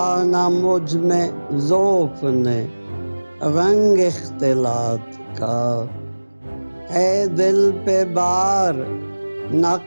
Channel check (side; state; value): both; inverted; correlation -1.00